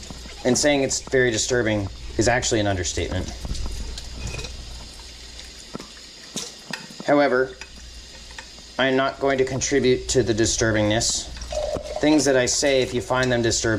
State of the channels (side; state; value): both; identical; correlation 1.00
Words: And saying it's very disturbing is actually an understatement. However, I'm not going to contribute to the disturbingness. Things that I say, if you find them